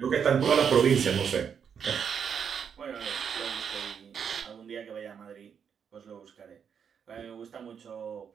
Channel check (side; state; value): left; quieter; 7.3 dB